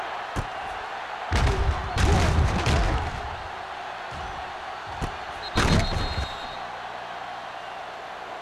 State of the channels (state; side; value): identical; both; correlation 1.00